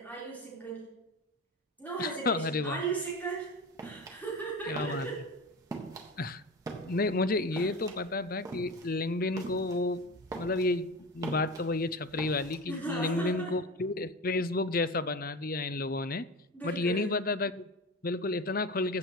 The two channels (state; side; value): normal; both; correlation 0.29